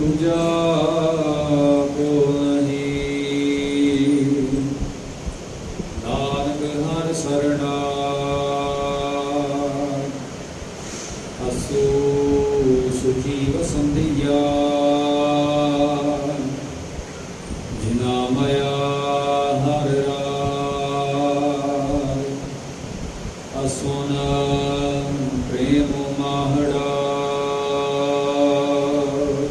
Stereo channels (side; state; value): both; identical; correlation 1.00